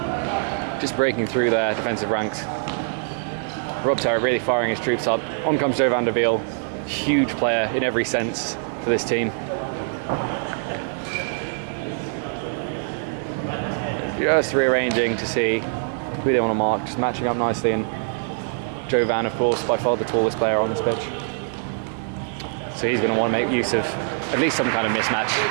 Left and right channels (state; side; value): silent; left; 63 dB below the other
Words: Just breaking through their defensive ranks. Rob Terrett really firing his troops up. On comes Joe van der Wiel, huge player in every sense for this team. Just rearranging to see who they want to mark, just matching up nicely, and Joe Van, of course, by far the tallest player on this pitch. So he's going to want to make use of at least some kind of mismatch.